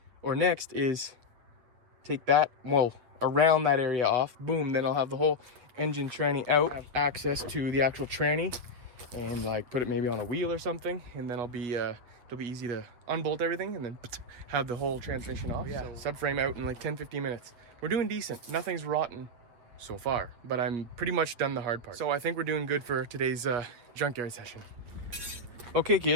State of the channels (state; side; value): late; left; 8.3 ms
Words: next is take that, well, around that area off. Boom, then I'll have the whole engine tranny out. I have access to the actual tranny and like put it maybe on a wheel or something, and then it'll be easy to unbolt everything and then have the whole transmission off. Yeah, so subframe out in like 10-15 minutes. We're doing decent. Nothing's rotten so far, but I'm pretty much done the hard part. So I think we're doing good for today's junkyard session. Okay